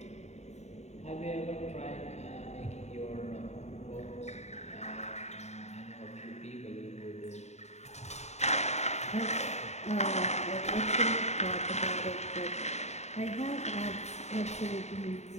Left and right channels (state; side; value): late; right; 0.32 ms